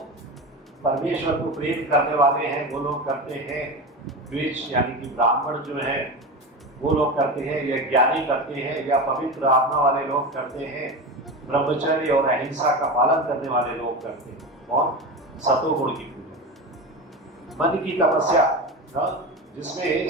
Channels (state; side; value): normal; both; correlation 0.24